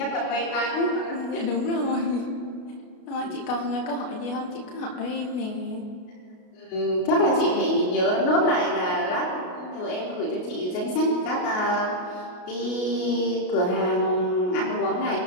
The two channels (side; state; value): right; late; 33 ms